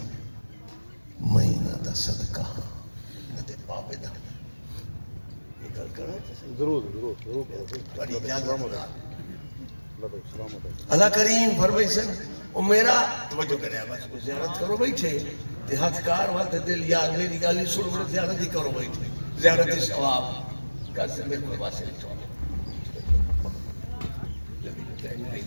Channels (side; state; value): both; inverted; correlation -1.00